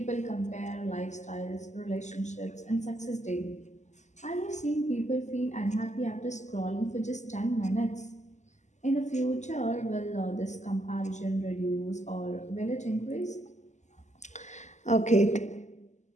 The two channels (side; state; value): right; late; 0.34 ms